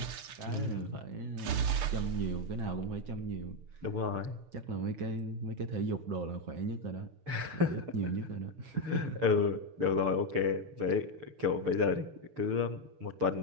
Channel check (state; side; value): late; left; 6.8 ms